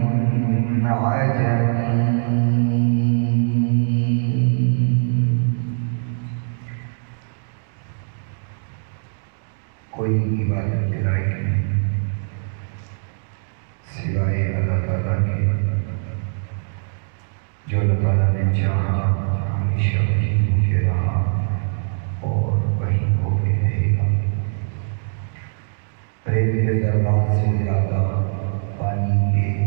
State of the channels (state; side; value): silent; left; digital silence